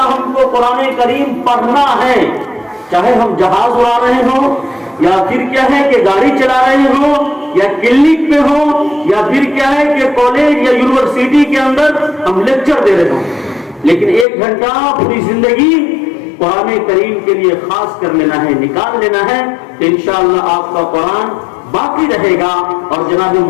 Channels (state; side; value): drops out; right; at 14.2 s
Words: ہم کو قرآن کریم پڑھنا ہے. چاہے ہم جہاز اڑا رہے ہوں یا پھر کیا ہے کہ گاڑی چلا رہے ہوں یا کلینک پہ ہوں یا پھر کیا ہے کہ کالج یا یونیورسٹی کے اندر ہم لیکچر دے رہے ہوں، لیکن 1 گھنٹہ پوری زندگی قرآن کریم کے لیے خاص کر لینا ہے، نکال لینا ہے. تو انشاءاللہ آپ کا قرآن باقی رہے گا. اور جناب